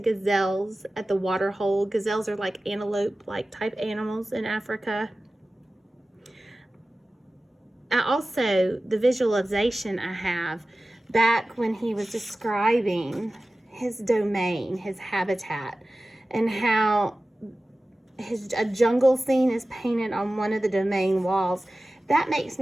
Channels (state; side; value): normal; both; correlation 0.96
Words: at the water hole. Gazelles are like antelope-like type animals in Africa. Also, the visualization I have back when he was describing his domain, his habitat, and how a jungle scene is painted on one of the domain walls. That makes